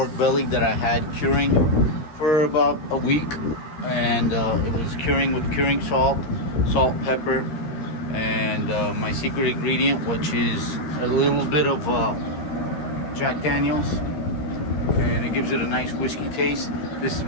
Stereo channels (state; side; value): late; right; 13 ms